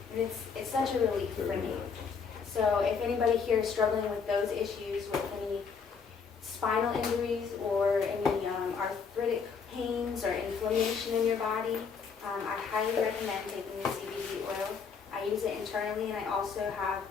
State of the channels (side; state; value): right; quieter; 5.8 dB